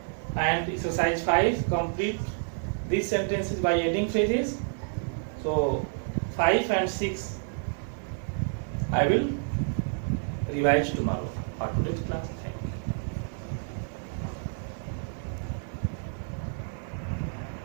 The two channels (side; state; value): left; silent; digital silence